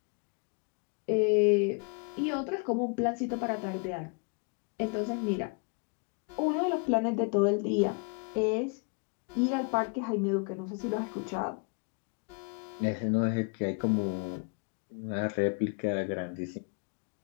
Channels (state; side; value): quieter; right; 35.7 dB